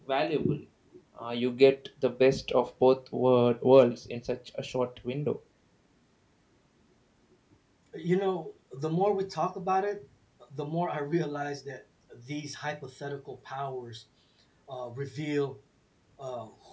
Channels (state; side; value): identical; both; correlation 1.00